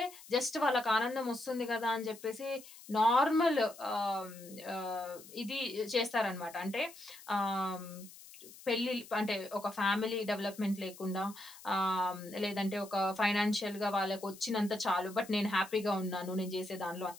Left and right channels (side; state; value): left; noise; hiss, 18 dB below the sound